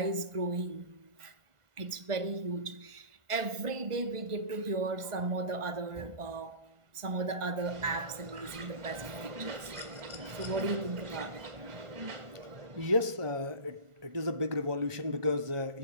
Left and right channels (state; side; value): late; left; 1.4 ms